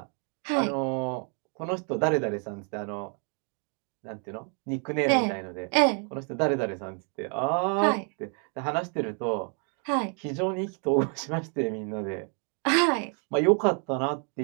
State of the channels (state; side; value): quieter; left; 39.9 dB